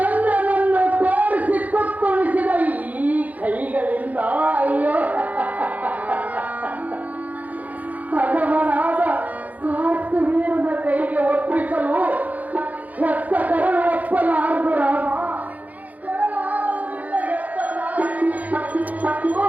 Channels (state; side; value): late; left; 0.077 ms